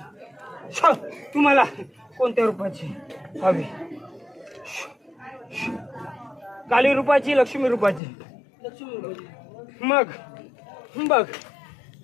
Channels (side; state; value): right; drops out; at 8.0 s